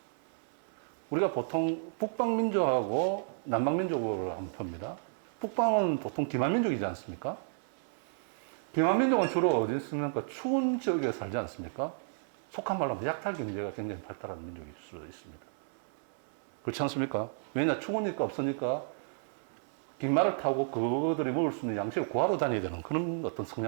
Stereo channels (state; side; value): silent; left; 56 dB below the other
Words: 우리가 보통 북방민족하고 남방민족을 한번 봅니다. 북방은 보통 기만민족이지 않습니까? 기만민족은 주로 어디 있습니까? 추운 지역에 살지 않습니까? 속한 말로 하면 약탈 경제가 굉장히 발달한 민족일 수 있습니다. 그렇지 않습니까? 왜냐, 추우니까 없으니까 깃말을 타고 그들이 먹을 수 있는 양식을 구하러 다녀야 되는 그런 어떤